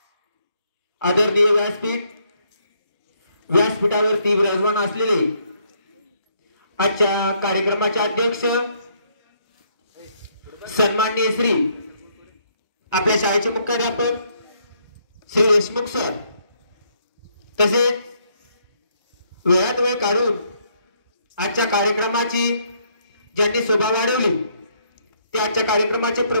आदरणीय व्यासपीठ, व्यासपीठावरती विराजमान असलेले आजच्या कार्यक्रमाचे अध्यक्ष सन्माननीय श्री आपल्या शाळेचे मुख्याध्यापक श्री देशमुख सर, तसेच वेळात वेळ काढून आजच्या कार्यक्रमाची ज्यांनी शोभा वाढवली ते आजच्या कार्यक्रमाचे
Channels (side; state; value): both; inverted; correlation -0.71